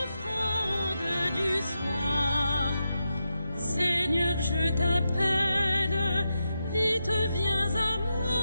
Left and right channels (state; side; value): inverted; both; correlation -0.87